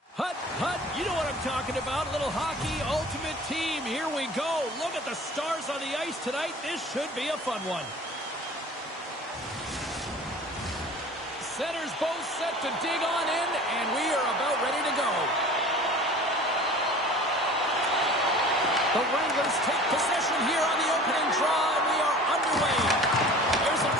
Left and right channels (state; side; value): normal; both; correlation 0.43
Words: hut, hut. You know what I'm talking about. A little hockey ultimate team. Here we go. Look at the stars on the ice tonight. This should be a fun one. Centers both set to dig on in, and we are about ready to go. The Wranglers take possession here on the opening draw, and we are underway. There's a